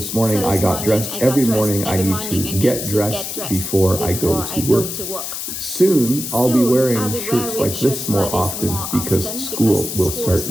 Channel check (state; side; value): noise; left; hiss, 6 dB below the sound